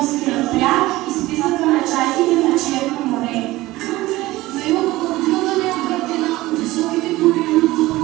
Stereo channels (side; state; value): left; quieter; 18.2 dB